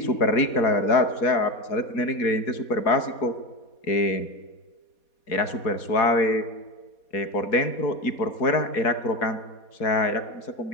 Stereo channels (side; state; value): right; late; 4.2 ms